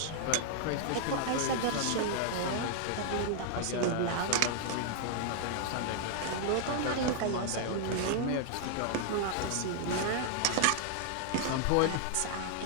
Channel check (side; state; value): both; different; correlation 0.00